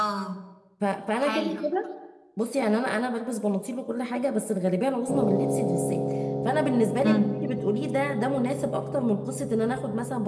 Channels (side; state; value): both; identical; correlation 1.00